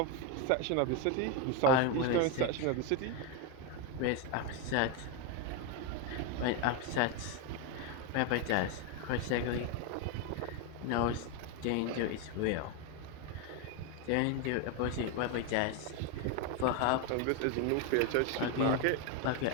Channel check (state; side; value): different; both; correlation 0.02